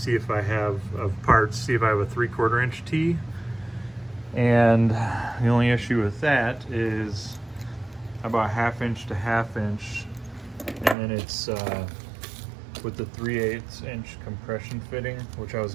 if I have parts, see if I have a 3/4 inch T. And the only issue with that is I bought 1/2-inch to 1/2-inch, and then it's with the 3/8 inch compression fitting, which I was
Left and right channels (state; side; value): drops out; left; at 11.0 s